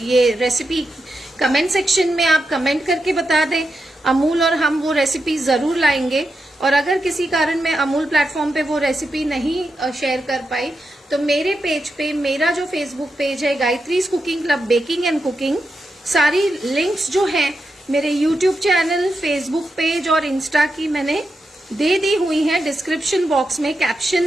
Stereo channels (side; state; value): both; normal; correlation 0.87